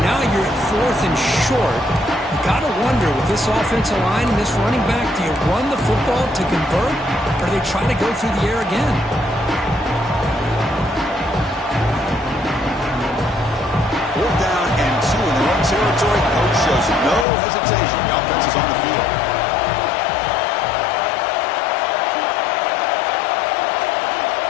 Now you're at fourth and short. You got to wonder, with this offensive line and this running back, do you run the football to convert, or do they try to go through the air again? Territory, coach shows no hesitation. The offense is on the field.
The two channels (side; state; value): right; drops out; at 17.2 s